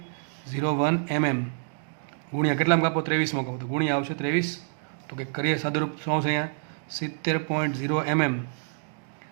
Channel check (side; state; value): left; silent; digital silence